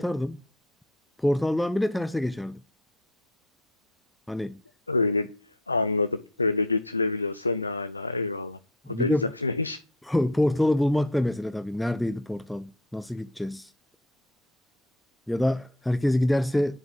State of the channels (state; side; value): normal; both; correlation 0.41